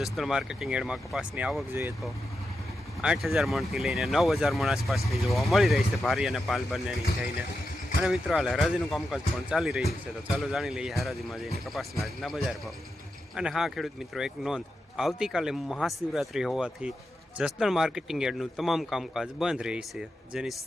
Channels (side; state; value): both; normal; correlation 0.88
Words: માર્કેટિંગ યાર્ડમાં કપાસની આવક જોઈએ તો 8,000 મણથી લઈને 9,000 મણ આસપાસની જોવા મળી રહી છે, ભારી અને પાલ બંનેની થઈને. અને મિત્રો, હાલ હરાજીનું કામકાજ પણ ચાલી રહ્યું છે, તો ચાલો જાણી લઈએ હરાજીમાં જઈને કપાસના આજના બજાર ભાવ. અને હા ખેડૂત મિત્રો, એક નોંધ: આવતીકાલે મહાશિવરાત્રિ હોવાથી જસદણ માર્કેટિંગ યાર્ડનું તમામ કામકાજ બંધ રહી છે, જેની